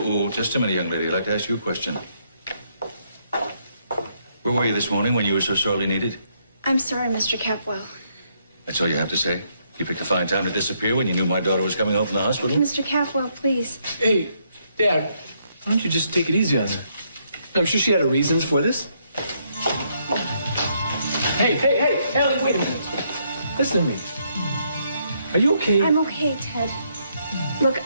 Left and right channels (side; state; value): both; inverted; correlation -0.74